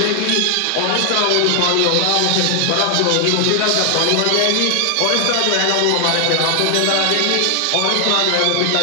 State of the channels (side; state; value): both; different; correlation 0.00